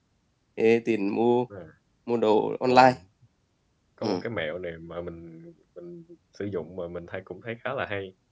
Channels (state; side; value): identical; both; correlation 1.00